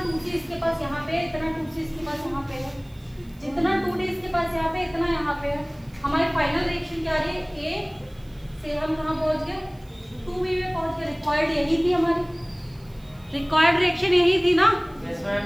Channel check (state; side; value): noise; right; hiss, 30 dB below the sound